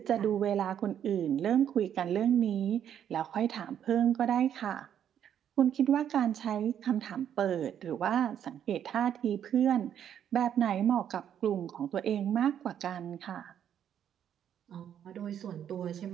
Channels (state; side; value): quieter; left; 9.5 dB